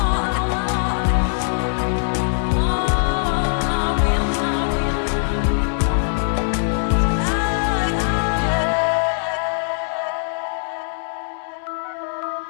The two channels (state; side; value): silent; right; digital silence